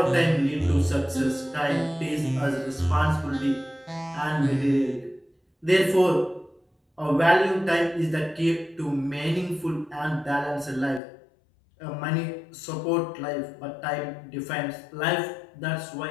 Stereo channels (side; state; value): right; drops out; at 11.0 s